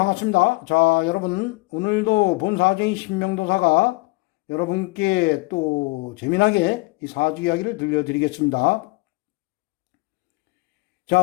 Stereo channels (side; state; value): right; quieter; 24.9 dB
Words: 자, 여러분 오늘도 본사주의 신명도사가 여러분께 또 재미나게 이 사주 이야기를 들려드리겠습니다. 자,